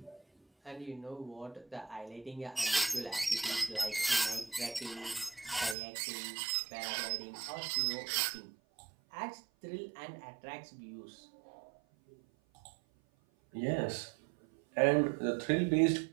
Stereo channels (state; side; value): drops out; left; at 5.8 s